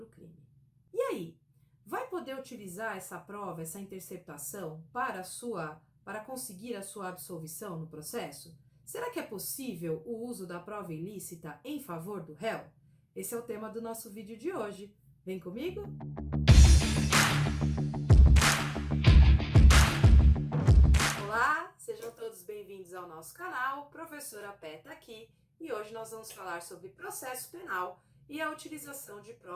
crime. E aí, vai poder utilizar essa prova, essa interceptação para conseguir a sua absolvição no processo? Será que é possível o uso da prova ilícita em favor do réu? Esse é o tema do nosso vídeo de hoje. Vem comigo? Olá, sejam todos bem-vindos ao nosso canal. Professora Pé tá aqui e hoje nós vamos falar sobre processo penal e a utilização de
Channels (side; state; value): both; identical; correlation 1.00